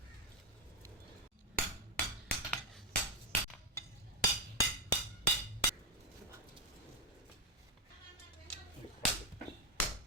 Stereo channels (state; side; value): normal; both; correlation 0.05